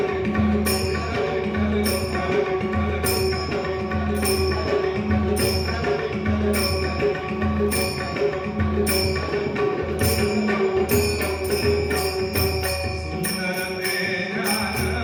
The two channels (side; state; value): both; identical; correlation 1.00